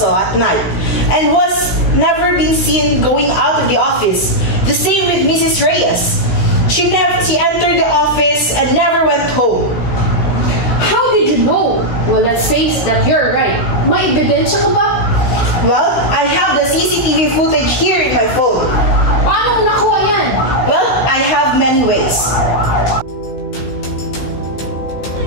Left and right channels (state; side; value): late; right; 16 ms